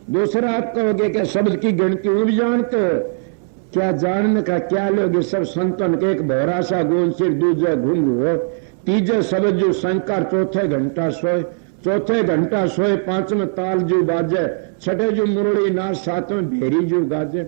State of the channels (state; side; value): silent; left; digital silence